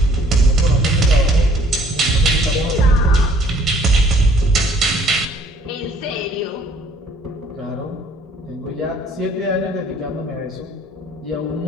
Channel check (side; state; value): both; normal; correlation 0.58